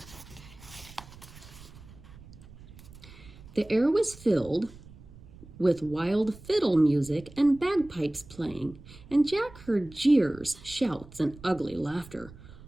The air was filled with wild fiddle music and bagpipes playing, and Jack heard jeers, shouts, and ugly laughter.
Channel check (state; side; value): noise; right; rumble, 19 dB below the sound